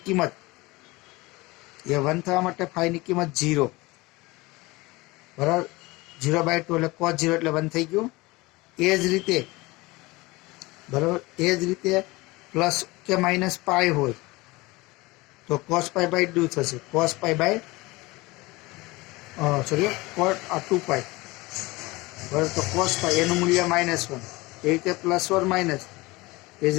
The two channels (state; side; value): quieter; right; 22.2 dB